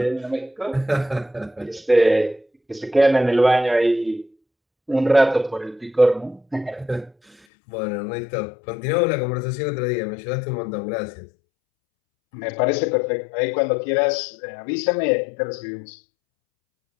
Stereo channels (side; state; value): right; drops out; at 7.4 s